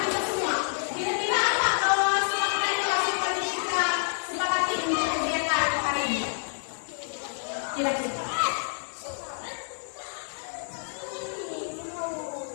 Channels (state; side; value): silent; right; digital silence